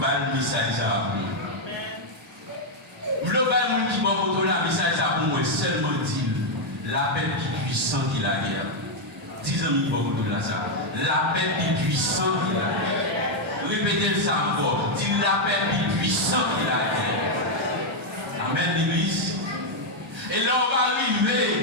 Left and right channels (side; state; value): both; normal; correlation 0.00